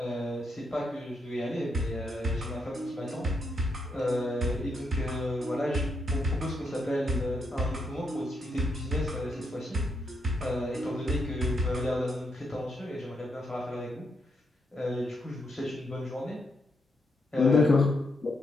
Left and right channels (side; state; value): both; normal; correlation 0.80